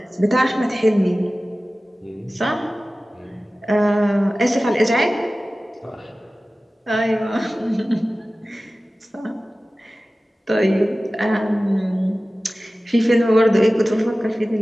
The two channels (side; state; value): both; normal; correlation 0.96